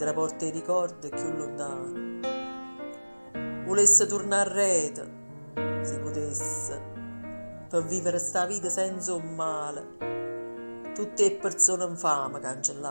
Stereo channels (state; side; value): inverted; both; correlation -1.00